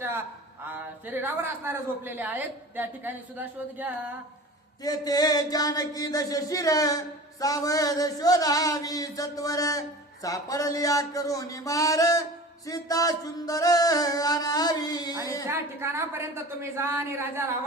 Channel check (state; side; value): normal; both; correlation 0.38